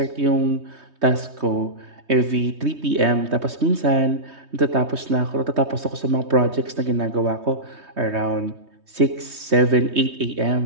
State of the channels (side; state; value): left; late; 3.2 ms